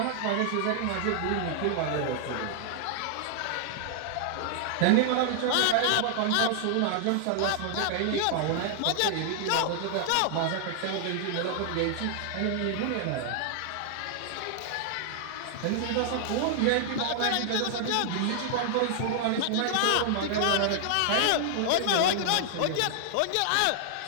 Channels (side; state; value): both; different; correlation 0.00